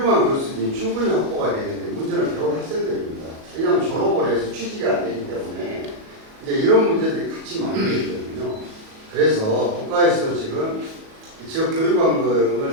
교수진이 충분히 확보가 되는데 문제는 배운 학생들입니다. 왜냐하면 졸업을 해서 취직이 안 되기 때문에 이제 이런 문제들이 같이 만들어져 있거든요. 그래서 국가에서 지금 지역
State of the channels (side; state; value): left; late; 37 ms